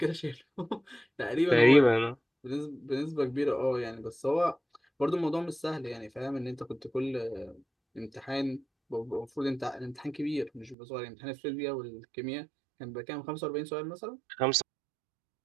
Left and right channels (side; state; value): left; drops out; at 10.8 s